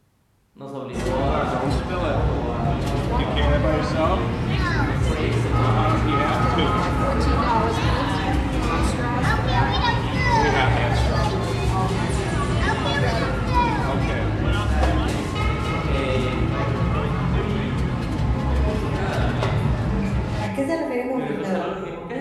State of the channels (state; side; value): identical; both; correlation 1.00